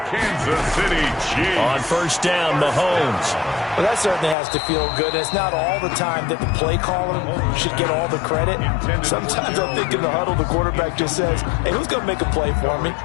Kansas City Chiefs. On first down, Mahomes. Well, that certainly has to feel good. It's not all the time that the play caller should get all the credit. Sometimes I think in the huddle, the quarterback just says, hey, who's going to make a play for me?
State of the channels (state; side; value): drops out; right; at 4.4 s